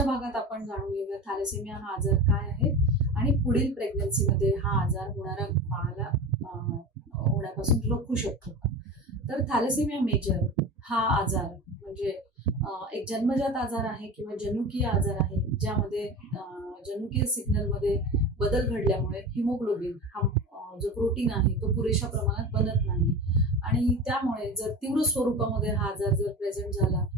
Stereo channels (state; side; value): normal; both; correlation 0.30